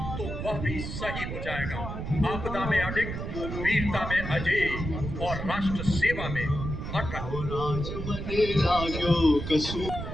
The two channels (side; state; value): right; noise; rumble, 5 dB below the sound